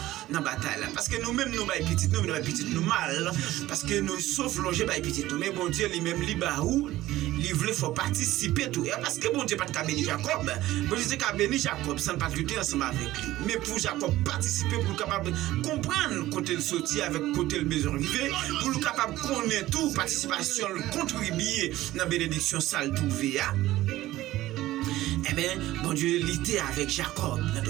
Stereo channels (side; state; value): left; quieter; 15.9 dB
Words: dans la bataille là parce que nous-mêmes nous bail petit nous mal parce que nous sauf longer bail petit mais bon Dieu lui-même libaou il voulait faut participer tout et parce que bon Dieu pas de bénir Jacob bon Dieu qu'a béni Jacob sans pas lutter ensemble avec lui mais pour Jacob participer pour capable comprendre côté le sortir avec côté le besoin arriver pour le capable connaître tout participation contribuer dans la bénédiction sale trouver. Eh bien, bon Dieu luttait avec Jacob.